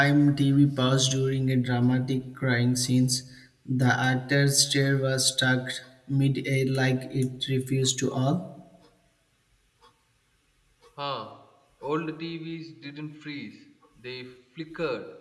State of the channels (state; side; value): identical; both; correlation 1.00